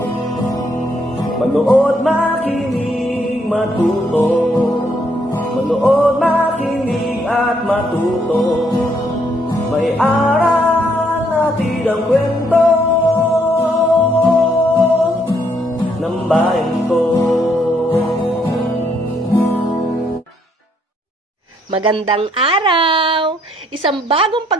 makinig, matuto. Manood, makinig at matuto. May aral natin ang kwento ng bayan ko. Magandang araw! Isang bagong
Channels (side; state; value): both; normal; correlation 0.71